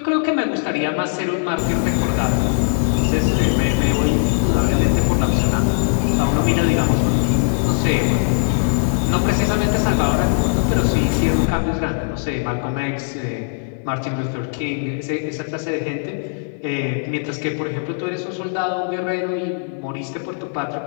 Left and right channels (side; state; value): right; silent; digital silence